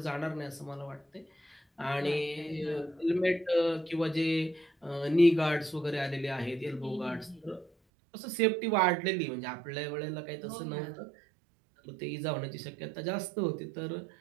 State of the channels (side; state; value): left; drops out; at 7.7 s